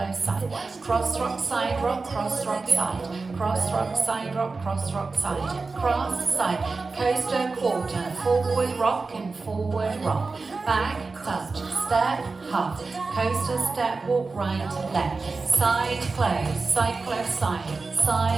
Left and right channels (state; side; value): quieter; left; 4.0 dB